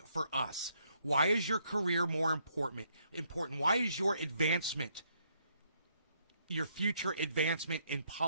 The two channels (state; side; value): inverted; both; correlation -0.72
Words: for us? Why is your career more important? Why is your advancement, your future advancement in